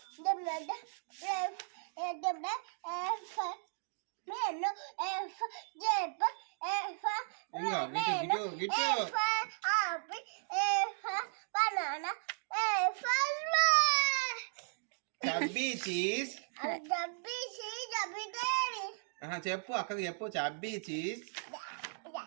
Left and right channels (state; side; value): silent; left; digital silence